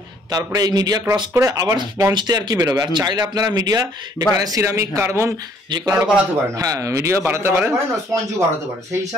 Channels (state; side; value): normal; both; correlation 0.62